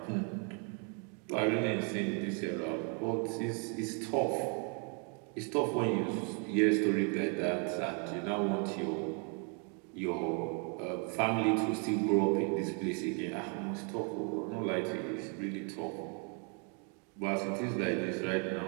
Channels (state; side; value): quieter; left; 38.6 dB